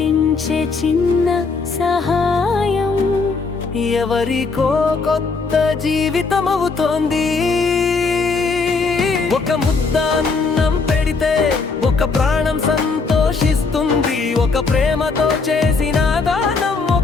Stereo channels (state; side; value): quieter; right; 4.4 dB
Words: చిన్న సహాయం ఎవరికో కొత్త జీవితం అవుతోంది. ఒక ముద్ద అన్నం పెడితే ఒక ప్రాణం సంతోషిస్తుంది. ఒక ప్రేమతో చేసిన దానం